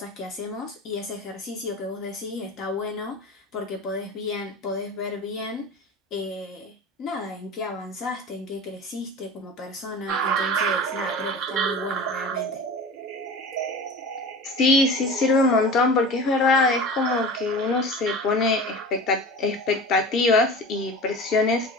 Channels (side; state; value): both; normal; correlation 0.34